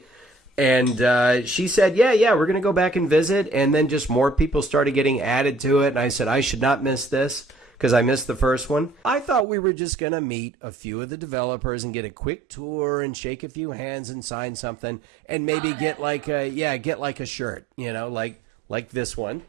And she said, yeah, we're going to go back and visit. And then just more people started getting added to it. And I said, I should not miss this because I missed the first one. I thought we were just going to meet a few of the developers and get a quick tour and shake a few hands and sign something. And maybe get like a shirt, like this one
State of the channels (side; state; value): left; drops out; at 9.5 s